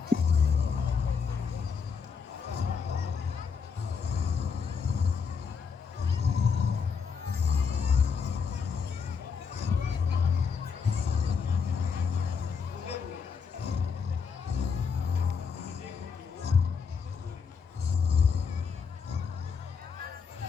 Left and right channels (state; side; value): quieter; right; 5.9 dB